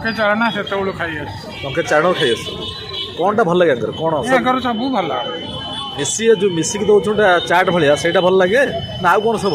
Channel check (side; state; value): both; identical; correlation 1.00